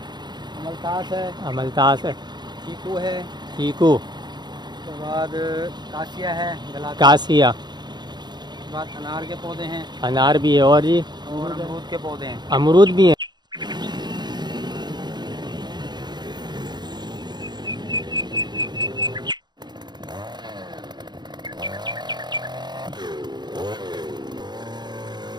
अमलतास है, चीकू है, चीकू, उसके बाद कासिया है, कासिया, उसके बाद अनार के पौधे हैं, अनार भी है, और जी और अमरूद के पौधे हैं। अमरूद भी है।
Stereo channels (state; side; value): late; left; 0.21 ms